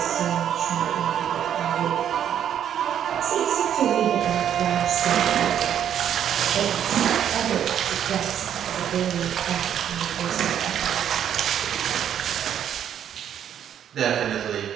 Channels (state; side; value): quieter; left; 9.6 dB